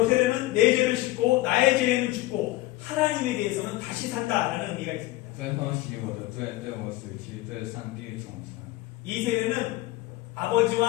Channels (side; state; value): right; quieter; 18.0 dB